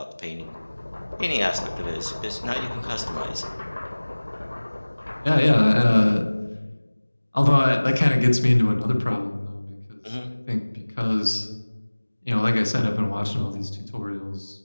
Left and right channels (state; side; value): inverted; both; correlation -1.00